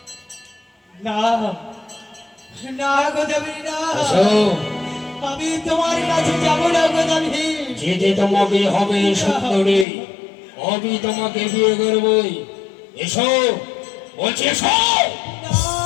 না না গো দাবির না, আমি তোমার কাছে যাব না গো দাবির। যেতে তোমাকে হবে সুন্দরী, আমি তোমাকে বিয়ে করবই। এসো বলছি, এসো।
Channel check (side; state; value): right; drops out; at 9.9 s